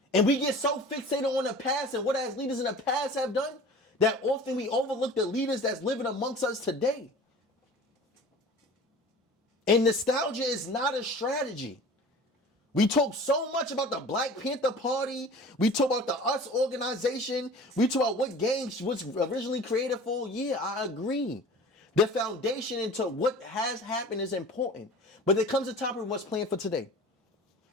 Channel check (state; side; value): normal; both; correlation 0.41